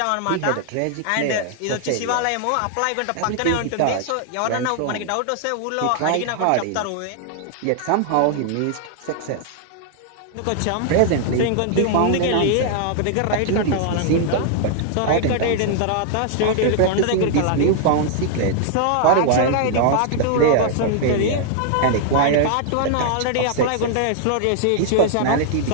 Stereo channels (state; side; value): different; both; correlation 0.00